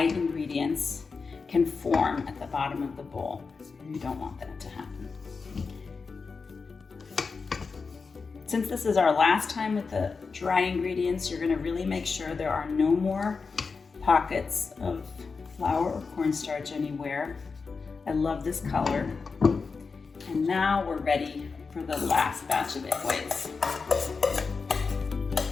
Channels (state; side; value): quieter; right; 4.8 dB